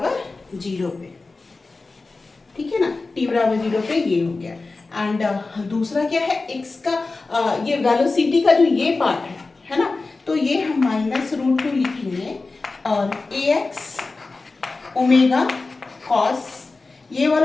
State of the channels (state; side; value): quieter; right; 3.7 dB